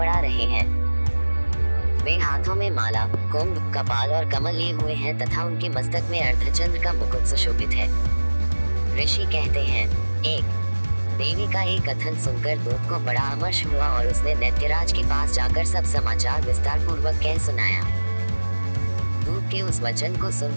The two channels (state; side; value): inverted; both; correlation -1.00